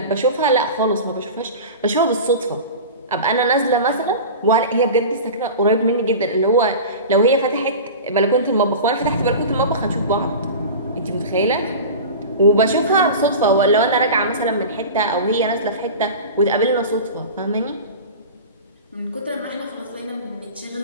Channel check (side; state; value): both; inverted; correlation -0.32